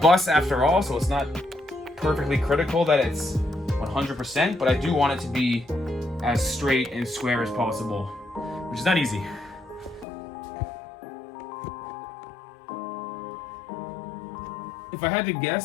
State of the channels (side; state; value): right; drops out; at 10.1 s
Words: after all, so it's not perfectly critical that it's 100%, but I do want it to be as straight and square as possible, which is not easy. If I had to